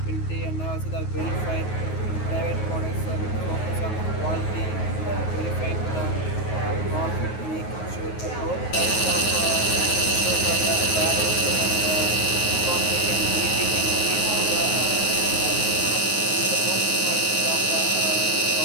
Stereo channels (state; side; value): late; right; 9.4 ms